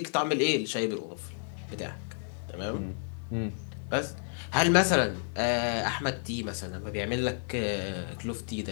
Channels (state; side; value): silent; right; digital silence